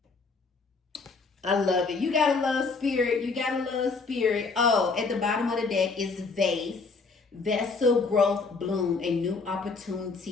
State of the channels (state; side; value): quieter; right; 4.4 dB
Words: I love it. You gotta love spirit. You gotta love spirit. Oh, at the bottom of the deck is vase. Vessel growth bloom. A new